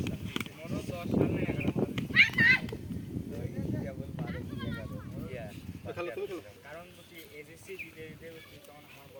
মনো 10 সাল না 11 সাল কেবল 12 11 কারণ বলছি এসএসসি দিতে দিতে তখন আমার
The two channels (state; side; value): identical; both; correlation 1.00